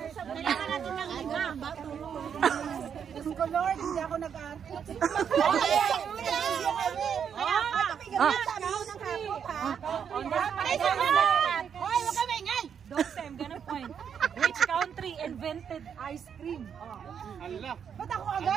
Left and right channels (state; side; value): quieter; left; 7.7 dB